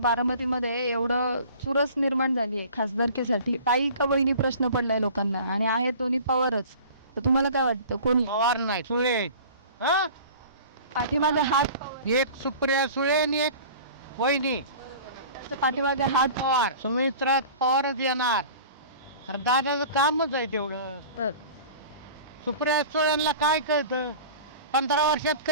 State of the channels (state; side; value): inverted; both; correlation -0.43